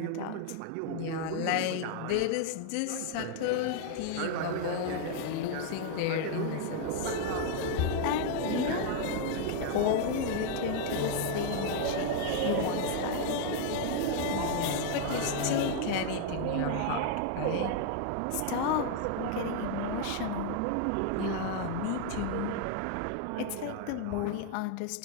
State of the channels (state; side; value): different; both; correlation 0.00